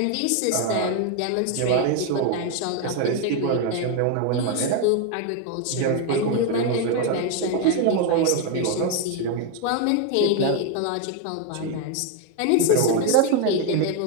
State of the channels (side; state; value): both; different; correlation 0.01